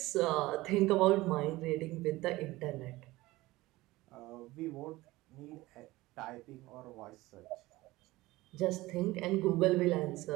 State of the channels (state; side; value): quieter; left; 19.2 dB